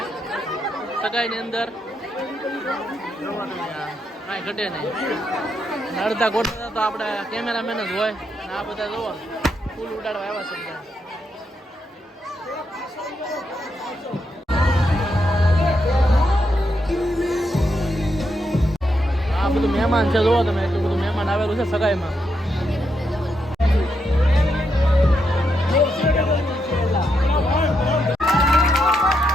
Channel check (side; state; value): both; normal; correlation 0.81